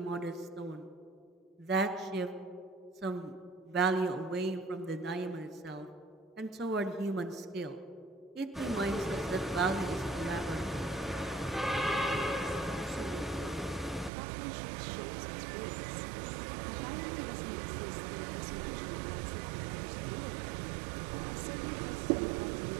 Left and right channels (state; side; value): drops out; left; at 14.1 s